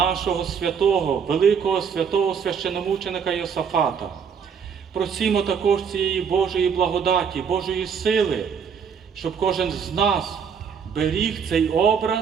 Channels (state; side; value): quieter; left; 6.8 dB